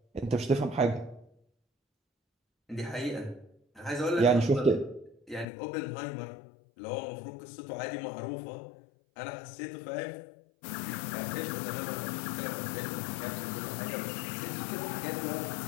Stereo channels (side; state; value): right; drops out; at 5.5 s